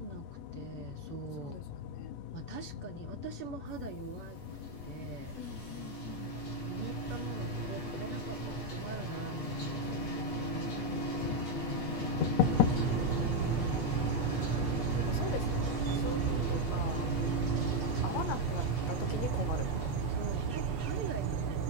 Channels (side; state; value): right; late; 8.3 ms